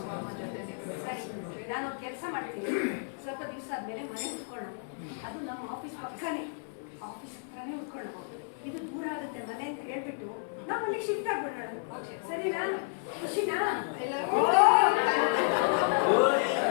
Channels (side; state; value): right; silent; 57 dB below the other